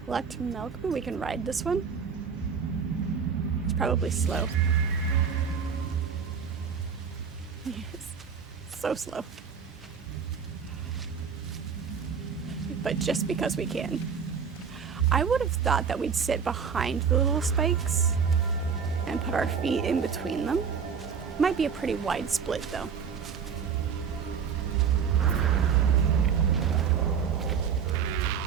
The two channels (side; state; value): left; quieter; 6.7 dB